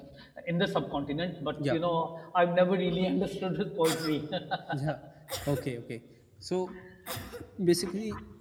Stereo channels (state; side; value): identical; both; correlation 1.00